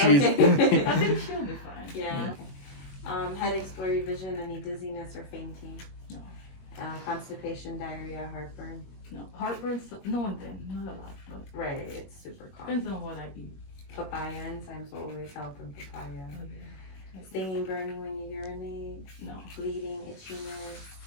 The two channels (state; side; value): late; right; 21 ms